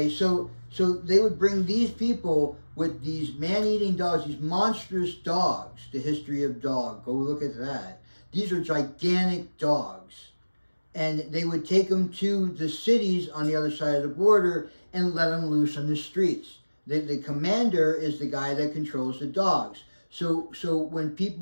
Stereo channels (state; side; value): inverted; both; correlation -1.00